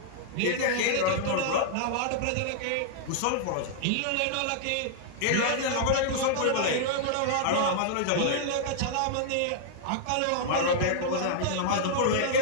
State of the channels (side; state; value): both; different; correlation -0.01